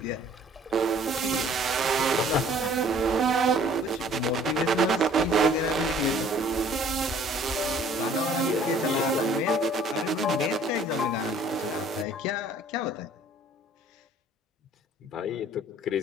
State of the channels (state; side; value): normal; both; correlation 0.55